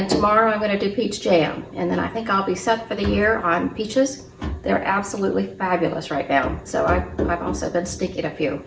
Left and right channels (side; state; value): both; identical; correlation 1.00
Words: tomorrow I'm going to do peach jam. And then I think I'll be set for the year on peaches. They're absolutely fabulous right now. So I've also been sneaking a few.